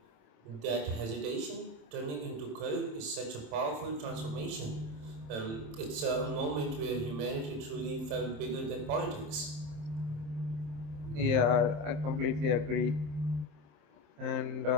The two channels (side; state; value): left; late; 27 ms